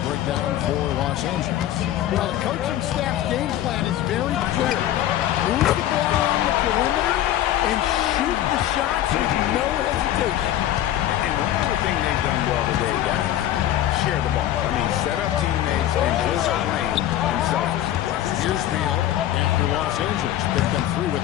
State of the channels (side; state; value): right; quieter; 12.5 dB